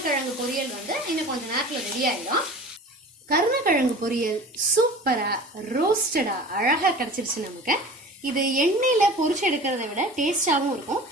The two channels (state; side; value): normal; both; correlation 0.39